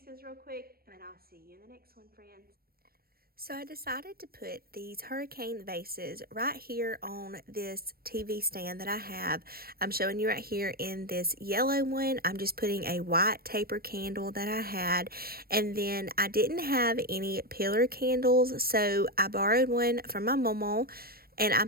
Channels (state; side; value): late; left; 0.44 ms